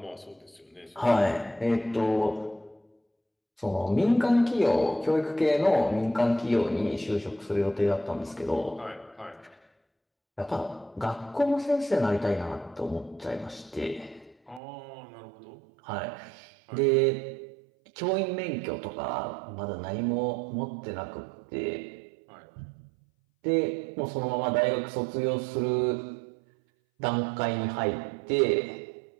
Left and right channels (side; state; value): left; drops out; at 14.6 s